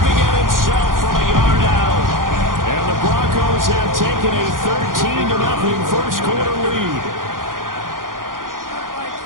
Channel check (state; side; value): late; left; 0.90 ms